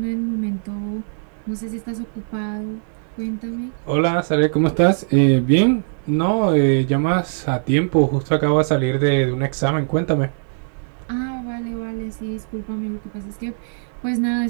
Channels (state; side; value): silent; left; digital silence